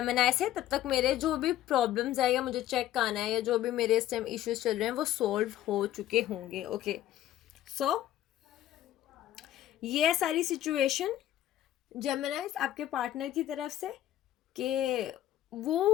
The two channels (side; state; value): right; quieter; 12.8 dB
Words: से, तब तक मेरे जो भी प्रॉब्लम्स है या मुझे चेक करना है या जो भी मेरे इस टाइम इश्यूज चल रहे हैं वो सॉल्व हो चुके होंगे। ओके, सो ये सारी सिचुएशन जेमिनी आपके पार्टनर की तरफ से कि वो